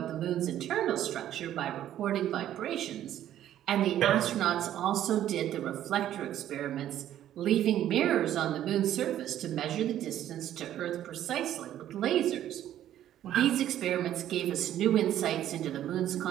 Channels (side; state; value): left; quieter; 11.8 dB